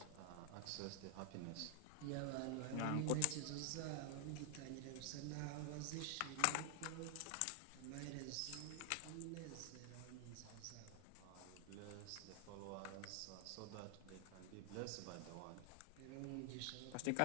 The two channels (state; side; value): different; both; correlation 0.00